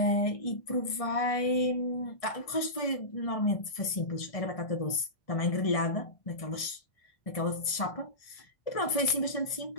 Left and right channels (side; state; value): right; late; 1.6 ms